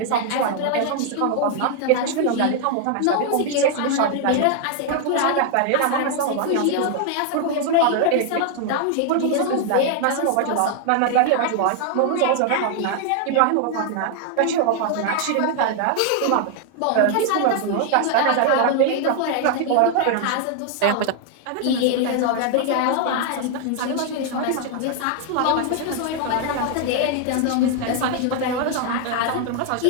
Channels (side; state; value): both; different; correlation 0.00